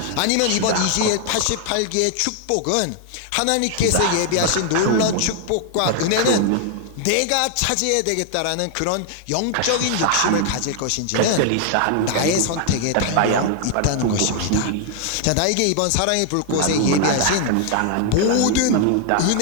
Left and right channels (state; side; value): different; both; correlation 0.00